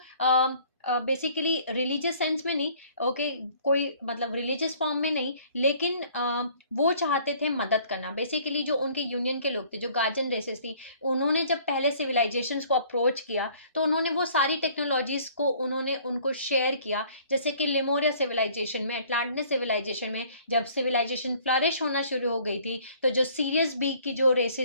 बेसिकली रिलीजियस सेंस में नहीं, ओके, कोई मतलब रिलीजियस फॉर्म में नहीं, लेकिन वो चाहते थे मदद करना। बेसिकली जो उनके यूनियन के लोग थे, जो गार्जियन रेसेस थी, उन्होंने जब पहले सिविलाइजेशंस को अप्रोच किया तो उन्होंने वो सारी टेक्नोलॉजीज को उन्होंने उनको शेयर किया। जैसे कि लिमोरिया सिविलाइजेशन में, अटलांटिस सिविलाइजेशन में जब सिविलाइजेशन फ्लरिश होना शुरू हो गई थी, तो जो सीरियस बी की जो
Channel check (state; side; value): inverted; both; correlation -0.56